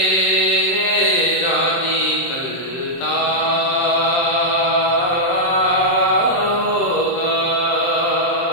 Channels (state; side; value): late; right; 23 ms